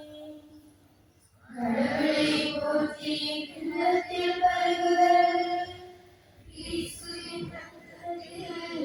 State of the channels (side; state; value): both; identical; correlation 1.00